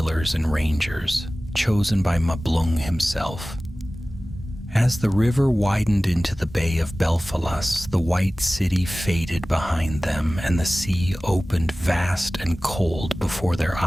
and rangers, chosen by Mablung himself. As the river widened into the Bay of Belfalas, the white city faded behind them, and the sea opened vast and cold before their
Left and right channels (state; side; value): normal; both; correlation 0.97